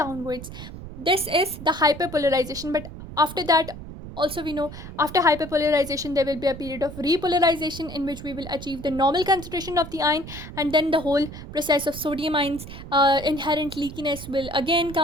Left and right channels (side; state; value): right; noise; rumble, 12 dB below the sound